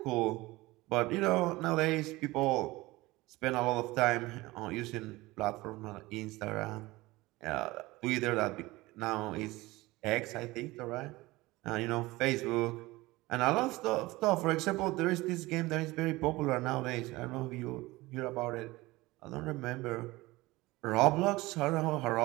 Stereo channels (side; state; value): left; quieter; 20.3 dB